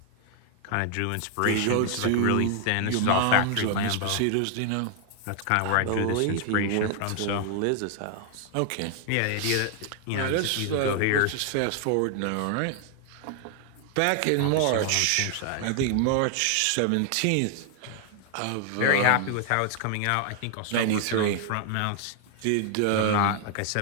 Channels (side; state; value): both; different; correlation 0.00